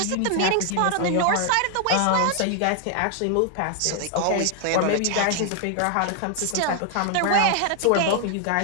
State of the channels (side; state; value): both; different; correlation 0.00